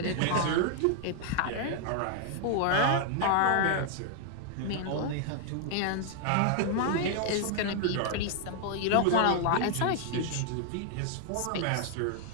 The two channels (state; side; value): different; both; correlation 0.00